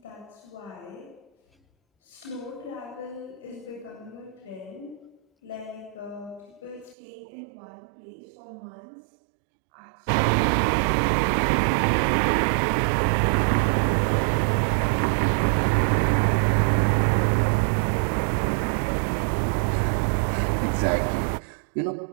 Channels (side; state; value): left; drops out; at 7.0 s